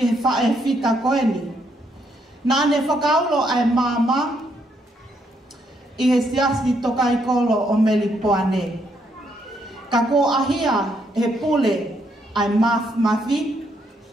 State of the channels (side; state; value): both; normal; correlation 0.74